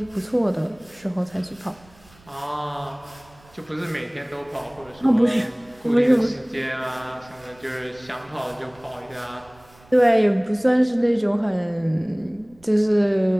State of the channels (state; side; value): noise; right; rumble, 28 dB below the sound